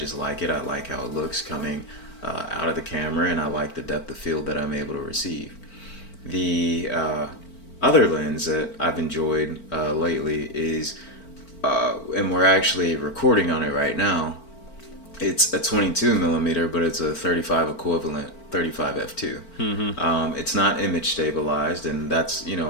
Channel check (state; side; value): late; right; 4.4 ms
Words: like it. I like how it looks coming out of the camera, and I like the depth of field that I'm able to receive. The other lens that I've enjoyed lately is, and we're actually recording on it right now, it's a 22 millimeter, but it's a 35 equivalent, 35 f2. Mm-hmm. It's not image stabilized, and that's